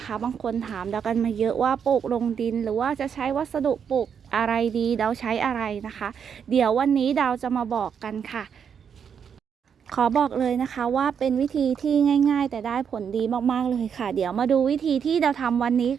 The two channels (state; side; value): quieter; left; 7.4 dB